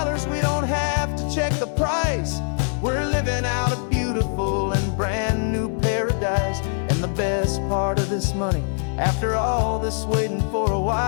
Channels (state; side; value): silent; right; digital silence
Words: we don't have to check the price. We're living out a beautiful and brand new paradise. And the best part of this money, after all this waiting for a